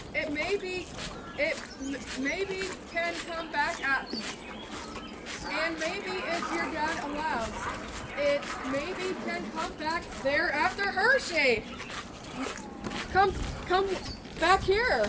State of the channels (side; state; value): both; identical; correlation 1.00